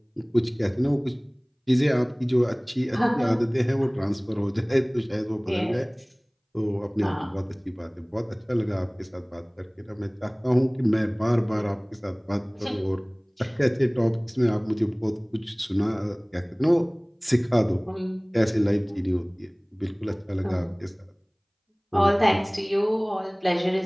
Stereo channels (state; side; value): identical; both; correlation 1.00